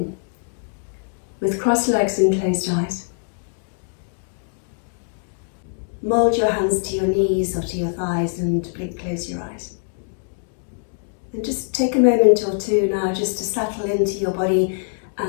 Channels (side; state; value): right; silent; digital silence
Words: with crossed legs and closed eyes. Mould your hands to your knees or to your thighs and close your eyes. And just take a moment or two now just to settle into your body